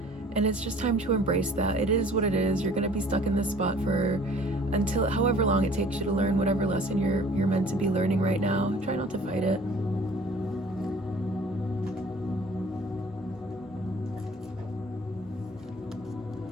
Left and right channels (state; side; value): normal; both; correlation 0.51